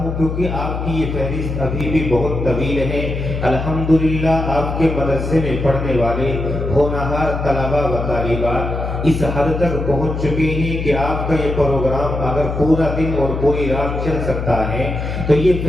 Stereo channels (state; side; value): noise; left; hum, 4 dB below the sound